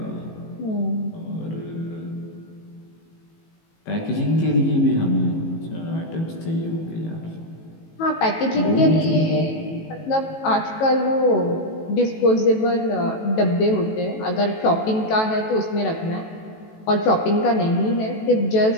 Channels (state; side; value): late; right; 18 ms